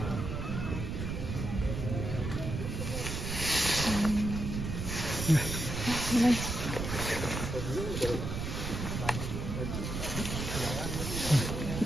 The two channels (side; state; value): right; noise; rumble, 4 dB below the sound